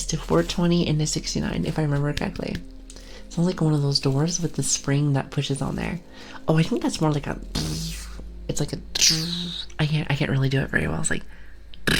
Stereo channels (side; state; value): both; identical; correlation 1.00